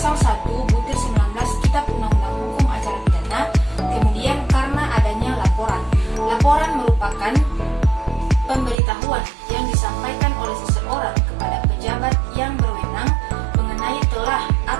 1/19 Kitab Undang-Undang Hukum Acara Pidana, kemudian karena adanya laporan. Laporan merupakan pemberitahuan yang disampaikan oleh seseorang kepada pejabat yang berwenang mengenai telah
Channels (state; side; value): drops out; left; at 8.8 s